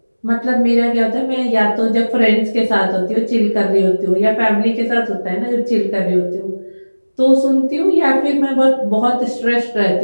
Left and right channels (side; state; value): both; inverted; correlation -1.00